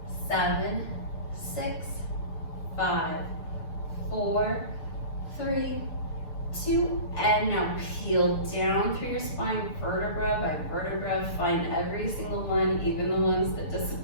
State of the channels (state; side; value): late; right; 6.8 ms